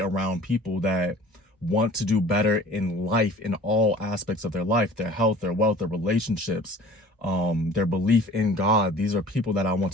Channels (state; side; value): normal; both; correlation 0.46